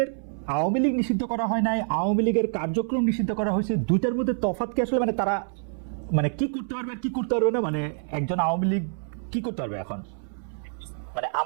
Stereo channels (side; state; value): left; silent; 61 dB below the other